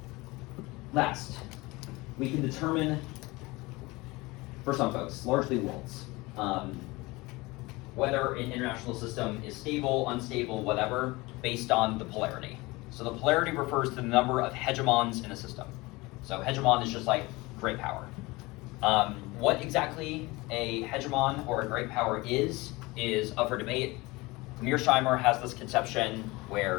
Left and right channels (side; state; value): right; quieter; 22.5 dB